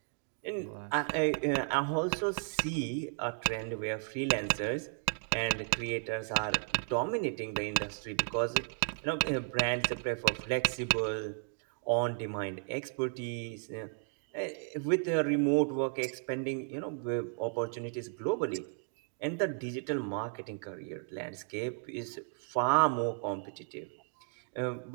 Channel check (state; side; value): silent; left; 55 dB below the other